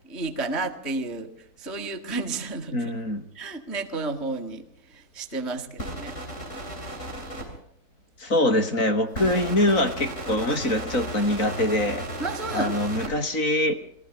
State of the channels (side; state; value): right; late; 3.9 ms